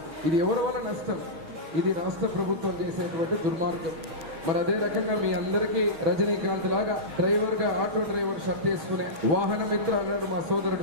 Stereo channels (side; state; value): left; late; 6.2 ms